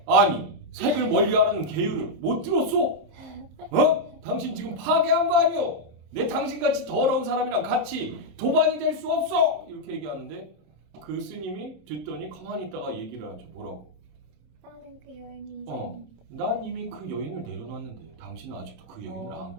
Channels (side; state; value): left; late; 27 ms